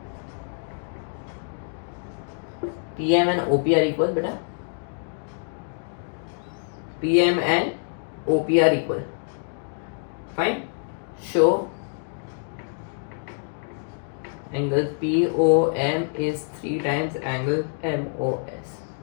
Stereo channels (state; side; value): silent; right; 61 dB below the other